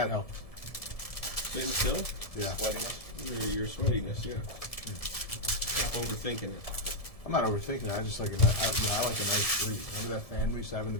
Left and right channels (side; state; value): right; late; 1.7 ms